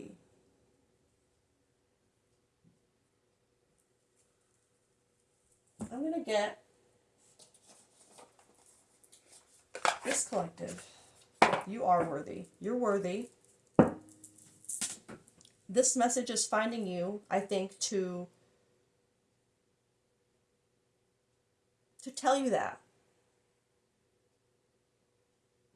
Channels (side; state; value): both; identical; correlation 1.00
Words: I'm going to get this collective. You are worthy. You're worthy. This message is finding you, I think, to tell you that.